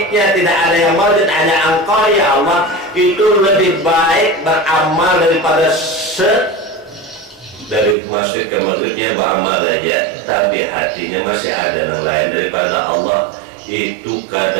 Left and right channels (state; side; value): drops out; left; at 8.0 s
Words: tidak ada yang wajib, hanya Engkau ya Allah, itu lebih baik beramal daripada dari masjid ke maghribnya beramal aja, tapi hatinya masih ada yang lain daripada Allah. Itu